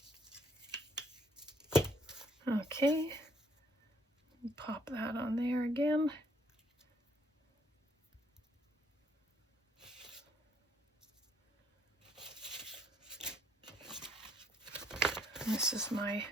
Okay, pop that on there again. This is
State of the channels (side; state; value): both; normal; correlation 0.67